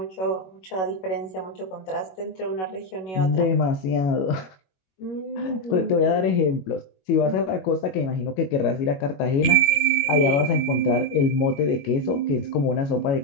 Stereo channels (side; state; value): right; late; 21 ms